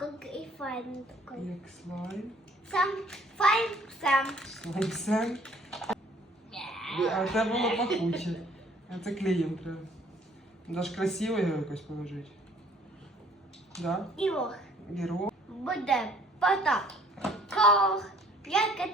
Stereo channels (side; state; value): both; normal; correlation 0.58